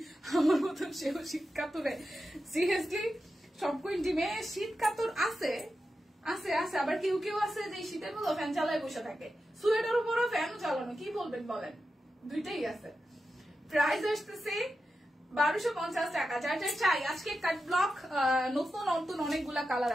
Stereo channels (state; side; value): normal; both; correlation 0.90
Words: শীত কাতুরে। সিরিয়াসলি সব কুইন টিমে শীত কাতুর আছে, আবার কেউ কেউ আছে যে শীতের মতো ফ্যান চালায় বসে থাকে, সোয়েটার উপরও ফ্যানও চালানো, কি বলবেন বলেন, দুইটাই আছে। প্রাইস আসতেছে 1250 টাকা। যার যার চাই আজকে কাট ব্লক, নতুন নতুন অনেকগুলা কালার